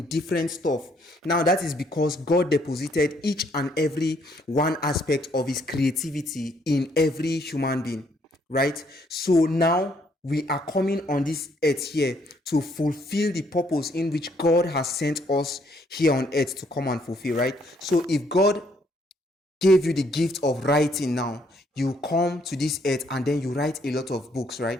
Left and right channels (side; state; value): both; normal; correlation 0.68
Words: different stuff. Now, that is because God deposited each and every one aspect of his creativity in every human being. Right? So now we are coming on this earth here to fulfill the purpose in which God has sent us here on earth to come and fulfill, right? So if God gave you the gift of writing now, you come to this earth and then you write a lot of books,